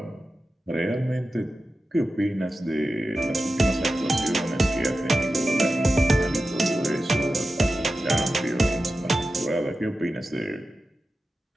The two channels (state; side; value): normal; both; correlation 0.92